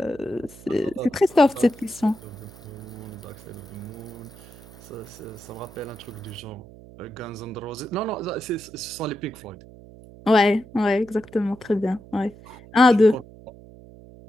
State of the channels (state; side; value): noise; right; hum, 19 dB below the sound